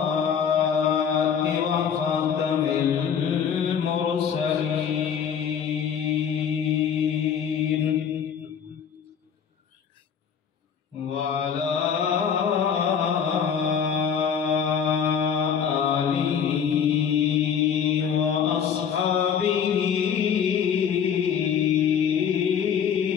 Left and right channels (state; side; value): quieter; right; 7.6 dB